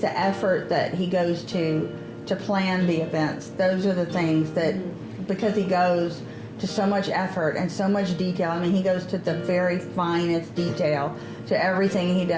effort that he goes to plan the events. Those are the things that, because he goes to so much effort and so much detail. I mean, he goes to the very finest detail to everything he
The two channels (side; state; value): both; identical; correlation 1.00